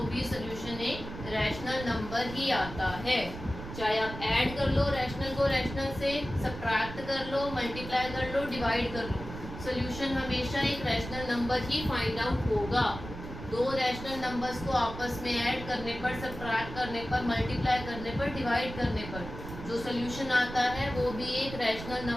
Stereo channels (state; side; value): noise; right; rumble, 10 dB below the sound